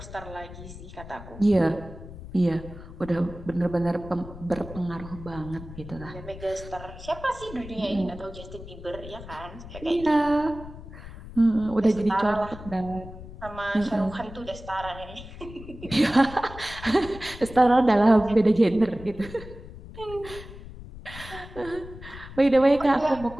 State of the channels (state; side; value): noise; left; rumble, 14 dB below the sound